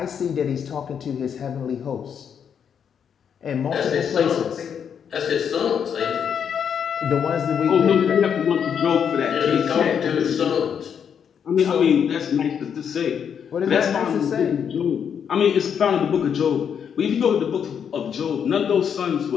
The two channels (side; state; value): right; quieter; 7.7 dB